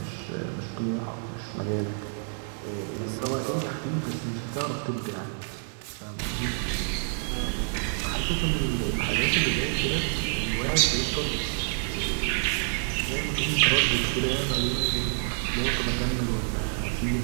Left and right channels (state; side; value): silent; left; 59 dB below the other